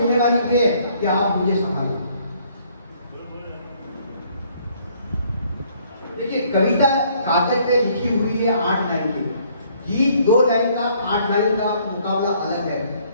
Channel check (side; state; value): both; inverted; correlation -0.64